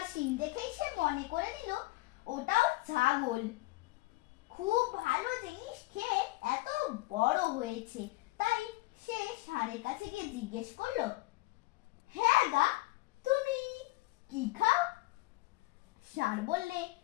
শিং দেখেই সে মনে করে নিল ওটাও ছাগল। খুব ভালো জিনিস খেয়ে এত বড় হয়েছে। তাই সে ষাঁড়ের কাছে গিয়ে জিজ্ঞেস করলো, হ্যাঁ গা, তুমি কি খাও? ষাঁড় বললে,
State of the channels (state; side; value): quieter; right; 21.0 dB